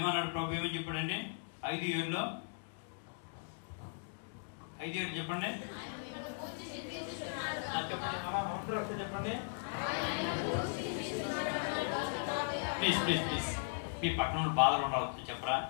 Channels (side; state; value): right; silent; digital silence